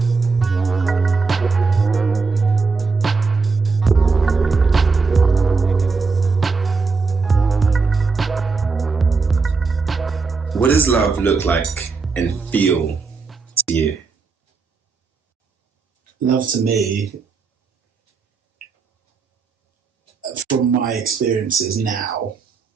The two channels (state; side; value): quieter; left; 4.6 dB